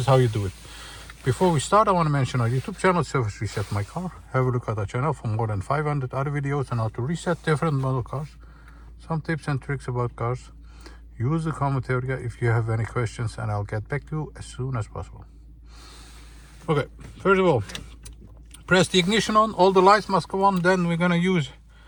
how you do it. Before we start, I want to mention our YouTube channel, Service Reset My Car. Have a look at our channel for more than 500 other videos on how to reset different model cars, some tips and tricks about cars. Use the comment area if you have any questions, and I'll get back to you as soon as possible. Okay, first of all, press the ignition on, all the lights must go on. Then we're gonna use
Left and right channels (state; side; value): identical; both; correlation 1.00